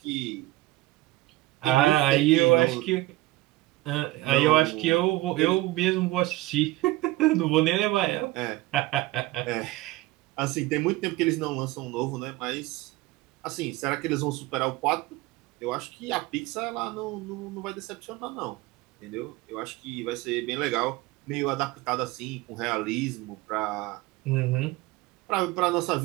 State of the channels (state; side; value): quieter; left; 18.4 dB